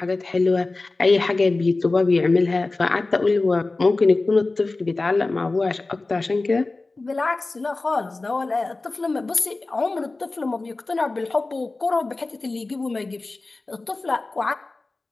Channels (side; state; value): right; quieter; 3.4 dB